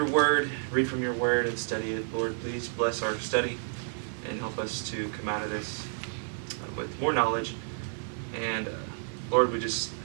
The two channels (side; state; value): left; silent; digital silence